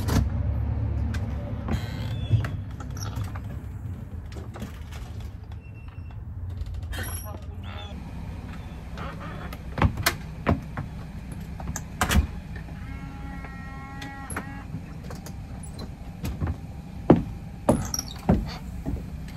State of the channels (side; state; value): both; identical; correlation 1.00